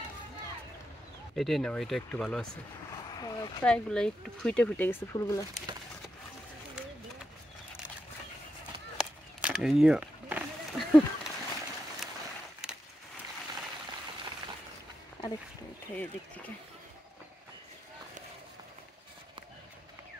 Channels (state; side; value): normal; both; correlation 0.86